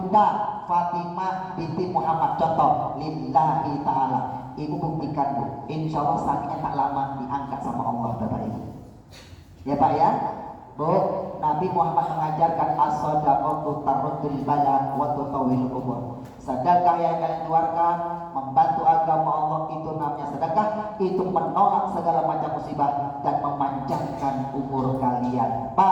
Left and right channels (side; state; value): both; identical; correlation 1.00